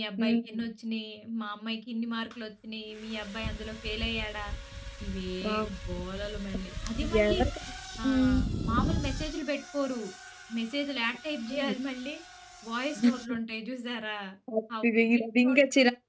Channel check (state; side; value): identical; both; correlation 1.00